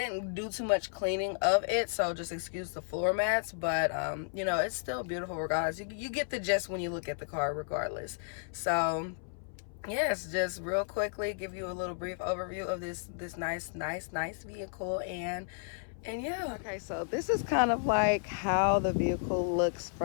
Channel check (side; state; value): right; silent; 56 dB below the other